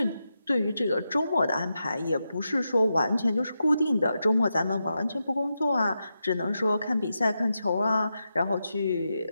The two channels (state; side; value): inverted; both; correlation -0.88